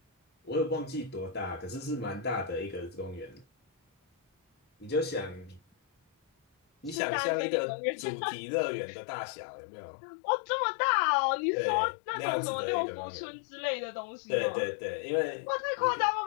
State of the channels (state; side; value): drops out; right; at 7.0 s